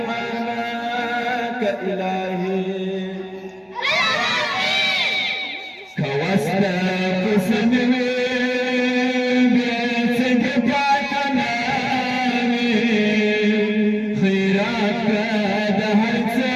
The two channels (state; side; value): identical; both; correlation 1.00